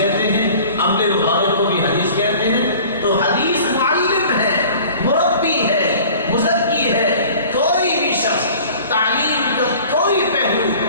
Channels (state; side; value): inverted; both; correlation -0.46